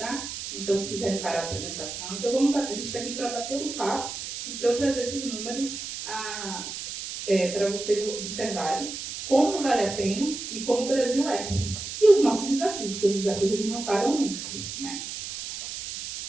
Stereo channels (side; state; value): right; noise; hiss, 7 dB below the sound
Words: Então, se quiserem parar a apresentação, então a gente está aqui para bater um papo e para eu trazer esses números para vocês observarem como vale a pena e como o Brasil é. E os nossos desafios, porque os desafios eles não param nunca, né?